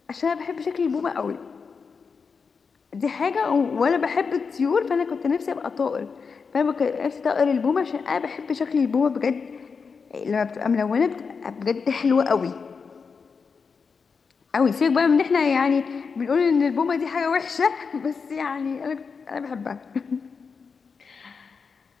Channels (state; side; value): quieter; right; 5.4 dB